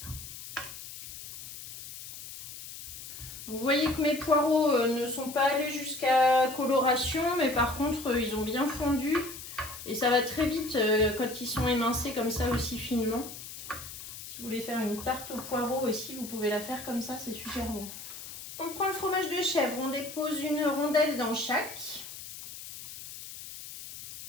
Vous voyez que mes poireaux ne sont pas allés jusqu'à coloration, mais par contre ils ont bien fondu et ça va très vite quand ils sont émincés comme ça aussi finement. Si vous voulez faire une tarte aux poireaux aussi, vous pouvez la faire comme ça, c'est super bon. On prend le fromage de chèvre, on dépose une rondelle dans chaque.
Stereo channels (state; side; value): noise; left; hiss, 12 dB below the sound